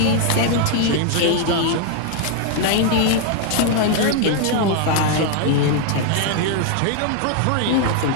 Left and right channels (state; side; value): different; both; correlation 0.00